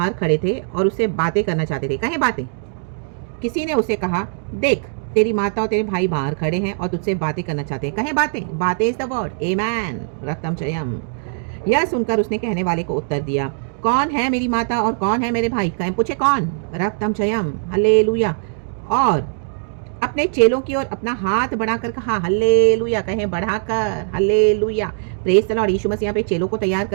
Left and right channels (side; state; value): left; silent; digital silence